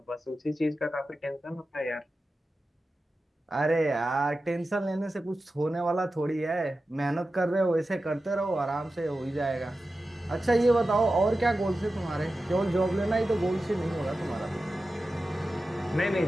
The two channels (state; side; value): normal; both; correlation 0.93